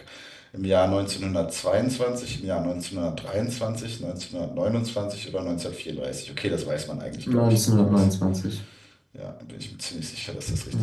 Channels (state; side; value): identical; both; correlation 1.00